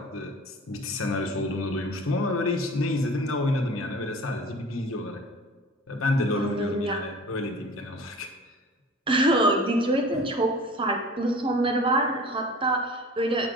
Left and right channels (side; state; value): both; normal; correlation 0.42